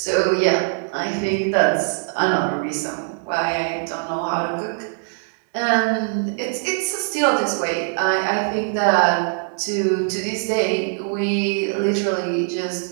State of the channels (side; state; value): left; silent; 63 dB below the other